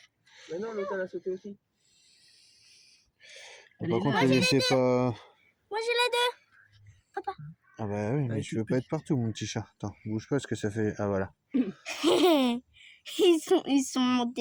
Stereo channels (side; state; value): both; identical; correlation 1.00